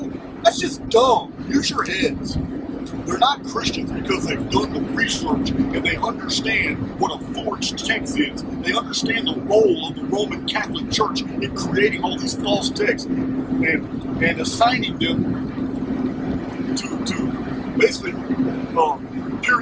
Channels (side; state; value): both; identical; correlation 1.00